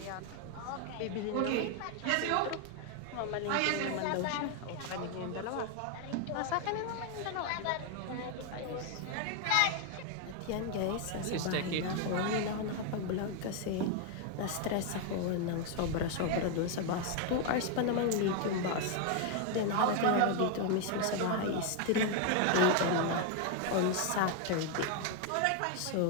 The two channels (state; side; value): different; both; correlation 0.01